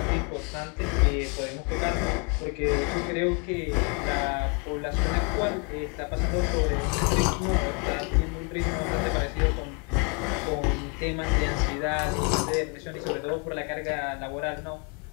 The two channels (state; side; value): quieter; right; 34.1 dB